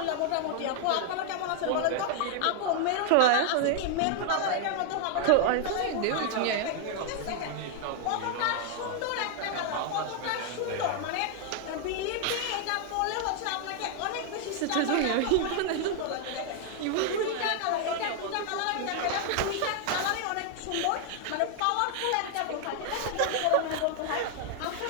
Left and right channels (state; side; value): different; both; correlation 0.00